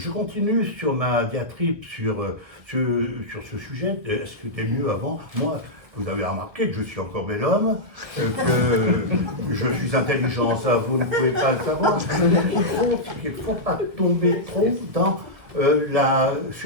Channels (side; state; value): left; late; 1.9 ms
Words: continue sur ma diatribe sur ce sujet. Est-ce que c'était mieux avant? Moi, vous avez remarqué que je suis encore bel homme, que je suis intelligent, ça vous ne pouvez pas le savoir. Il ne faut pas tomber trop dans la